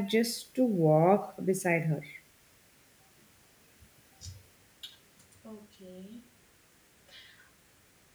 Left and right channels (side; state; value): both; identical; correlation 1.00